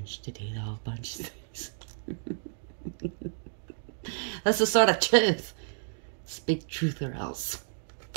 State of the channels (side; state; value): left; silent; digital silence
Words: to do the whole bunch of things. That's the sort of truth. Speak truth or else.